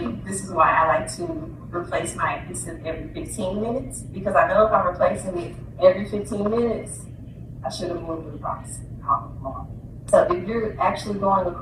this is why I like to replace my adhesive every 15 minutes, because I know if I'm replacing it every 15 minutes, I should have moved it across. So if you're actually going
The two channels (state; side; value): identical; both; correlation 1.00